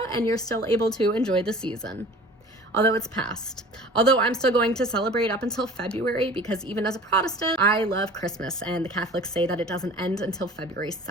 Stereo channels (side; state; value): both; normal; correlation 0.44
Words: and you're still able to enjoy the season. Although it's past. Although I'm still going to celebrate up until February because even as a Protestant, I love Christmas and the Catholics say that it doesn't end until February